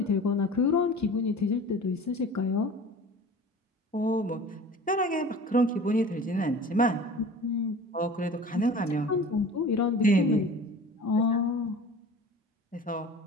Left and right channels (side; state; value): both; normal; correlation 0.40